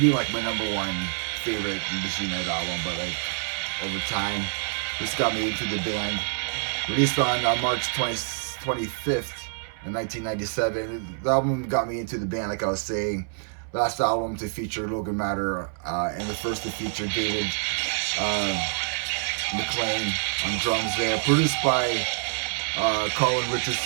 like my number 1 favorite Machine Head album, but like over time, this got me into the band. Released on March 25th. In 1997, the album got me into the band, like I was saying. Last album to feature Logan Matter, and the first to feature David McLean on drums there. Produced by Colin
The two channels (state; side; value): silent; left; 61 dB below the other